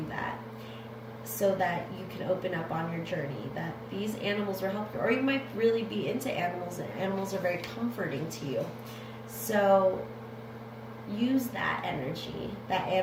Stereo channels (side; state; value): both; identical; correlation 1.00